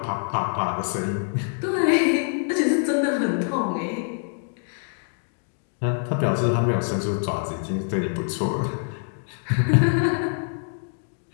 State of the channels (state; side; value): silent; right; 57 dB below the other